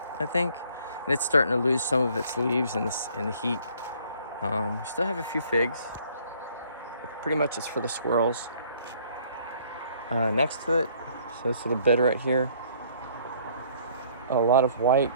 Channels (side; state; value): both; inverted; correlation -0.60